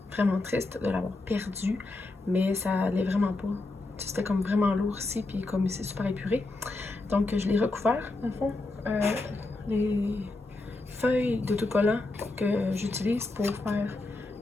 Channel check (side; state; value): right; quieter; 3.0 dB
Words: Vraiment triste de l'avoir perdu, mais ça allait vraiment pas. C'était comme vraiment lourd ici, puis comme c'est super épuré. Donc, je l'ai recouvert, dans le fond. Les feuilles d'autocollant que j'utilise pour faire